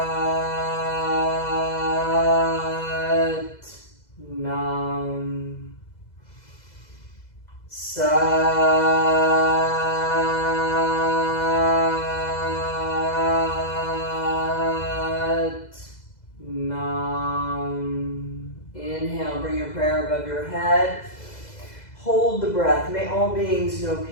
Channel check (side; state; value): right; late; 2.0 ms